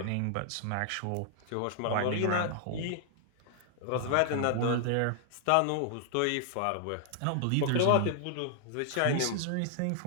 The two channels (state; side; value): different; both; correlation 0.00